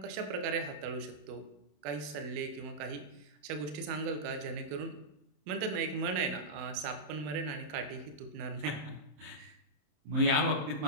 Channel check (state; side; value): late; left; 28 ms